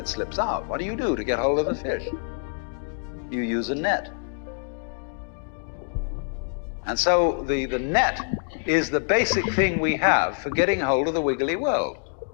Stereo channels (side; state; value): right; silent; digital silence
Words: slips out. What do you do to get hold of the fish? You use a net. And so the net is the basic thing we have for getting hold of the wiggly world.